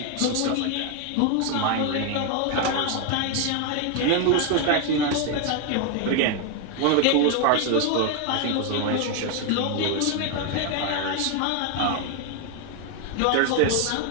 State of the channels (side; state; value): both; different; correlation 0.01